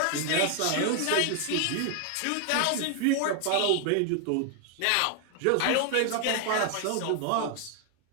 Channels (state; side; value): different; both; correlation 0.00